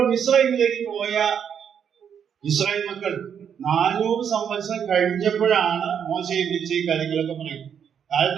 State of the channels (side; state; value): left; quieter; 8.0 dB